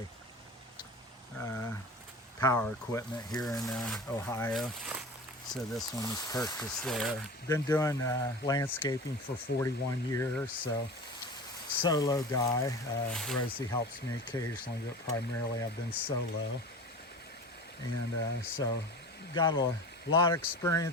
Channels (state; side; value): normal; both; correlation 0.34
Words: power equipment here in Ohio. So this one was purchased there. Been doing landscaping for 41 years, so solo guy. Rosie helps me occasionally, but primarily I've been solo. And so got a lot of